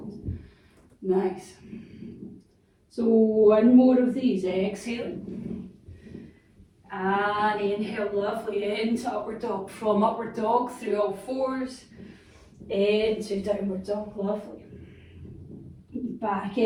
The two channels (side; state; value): both; identical; correlation 1.00